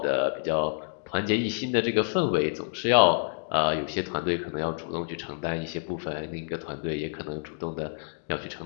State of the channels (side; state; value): right; silent; digital silence